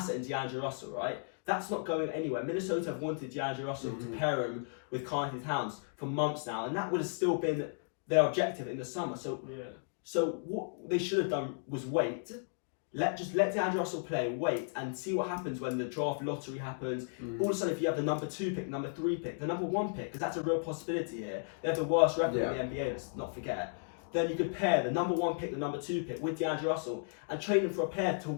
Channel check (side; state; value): right; silent; digital silence